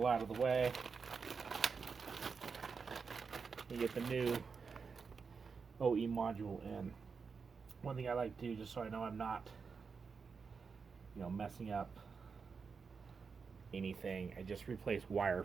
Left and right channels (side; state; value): left; quieter; 5.4 dB